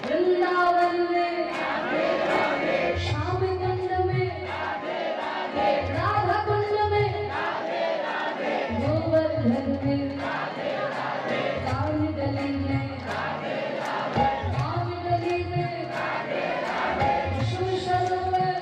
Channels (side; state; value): both; identical; correlation 1.00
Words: वृंदावन में श्याम कुंड में, राधा कुंड में, गोवर्धन में, काली गली में, काली गली में, सरोवर,